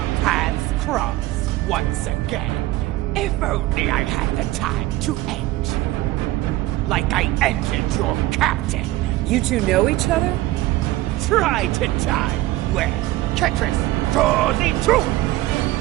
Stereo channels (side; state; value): left; quieter; 17.2 dB